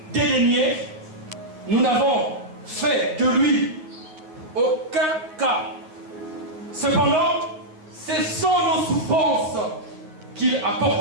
dédaigné, nous n'avons fait de lui aucun cas. Cependant, ce sont nos souffrances qu'il a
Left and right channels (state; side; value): late; left; 9.7 ms